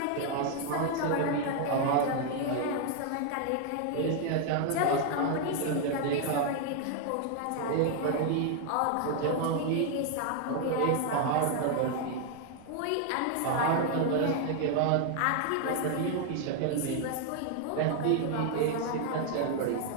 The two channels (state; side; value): different; both; correlation 0.00